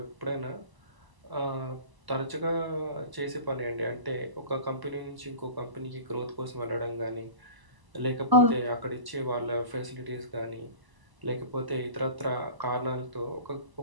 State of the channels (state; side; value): late; left; 1.0 ms